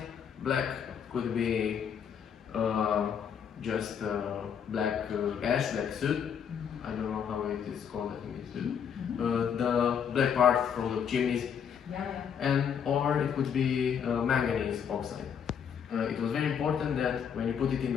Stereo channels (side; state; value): right; quieter; 7.8 dB